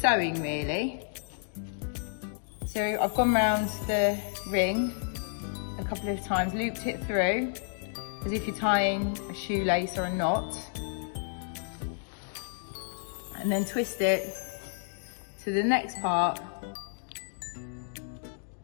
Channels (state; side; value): silent; right; digital silence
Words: really. So I've gone round the ring a couple of times, looped it through as if you're tying a shoelace or a knot, and then twist it to the next part.